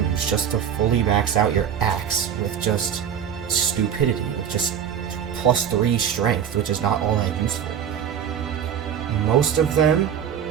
just to fully max out your axe with just stupidity, with just +3 strength, which is not all that useful. Most of them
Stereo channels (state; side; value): quieter; left; 8.8 dB